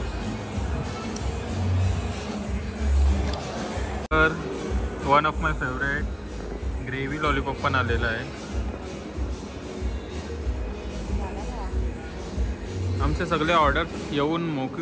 तर one of my favourite gravy lollipop पण आलेला आहे. आमचे सगळे ऑर्डर येऊन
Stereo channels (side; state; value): both; identical; correlation 1.00